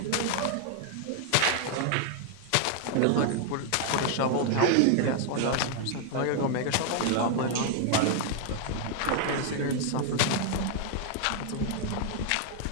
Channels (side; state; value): both; different; correlation 0.00